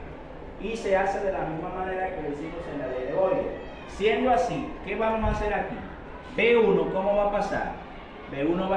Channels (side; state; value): both; identical; correlation 1.00